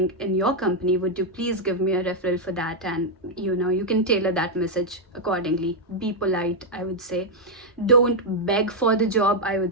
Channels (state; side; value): normal; both; correlation -0.01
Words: in your company, would you please give me a referral for that? And you can tailor that message accordingly. Be polite, I would say. Don't beg for the job. I